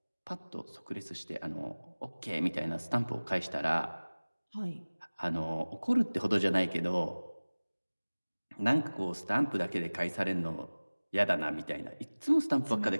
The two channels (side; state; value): both; inverted; correlation -1.00